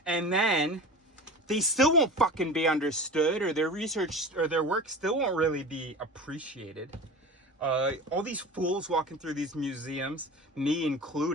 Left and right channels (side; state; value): both; normal; correlation 0.33